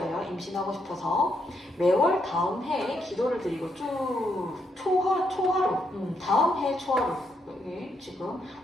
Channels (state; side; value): normal; both; correlation 0.78